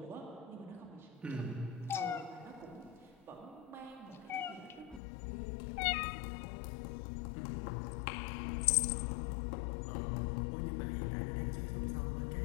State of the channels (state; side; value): drops out; right; at 5.0 s